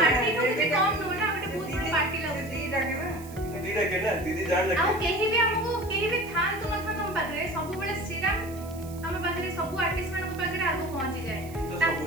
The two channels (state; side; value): noise; right; hiss, 19 dB below the sound